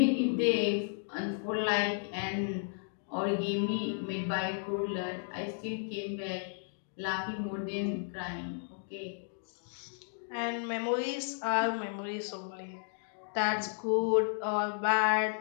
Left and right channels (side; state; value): right; silent; digital silence